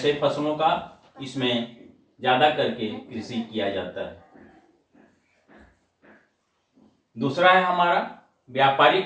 फसलों का इसमें ज़्यादा करके कृषि किया जाता है। दूसरा है हमारा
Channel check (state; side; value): identical; both; correlation 1.00